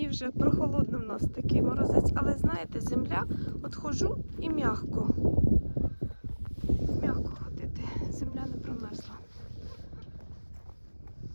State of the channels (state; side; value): inverted; both; correlation -1.00